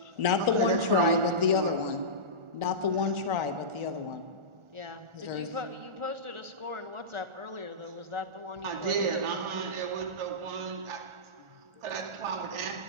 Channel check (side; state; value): left; late; 1.4 ms